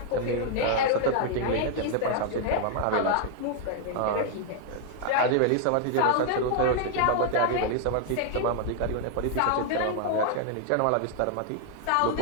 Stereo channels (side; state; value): both; different; correlation 0.00